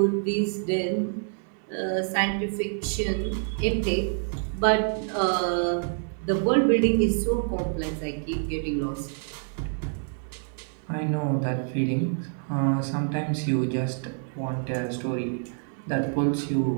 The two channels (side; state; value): left; silent; 60 dB below the other